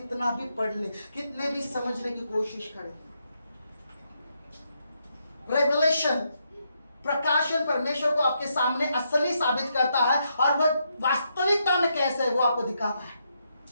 भी पढ़ ले, कितने भी समझने की कोशिश करें। रेवलेशन, प्रकाशन परमेश्वर को आपके सामने असली साबित करता है, और वह वास्तविकता में कैसे है वो आपको दिखाता है।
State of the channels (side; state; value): both; inverted; correlation -0.79